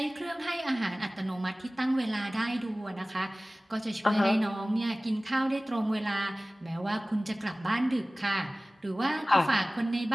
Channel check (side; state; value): both; normal; correlation 0.98